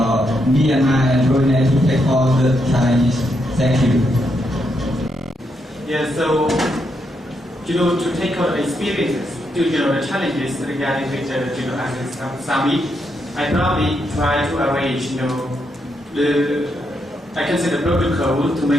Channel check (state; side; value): normal; both; correlation 0.80